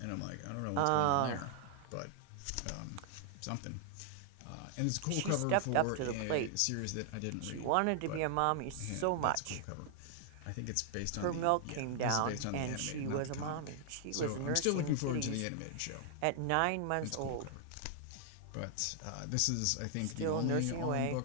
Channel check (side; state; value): both; different; correlation 0.00